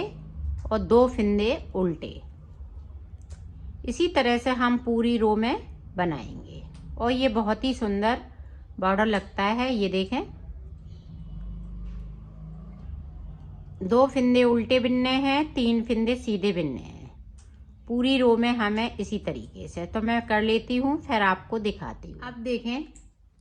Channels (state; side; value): identical; both; correlation 1.00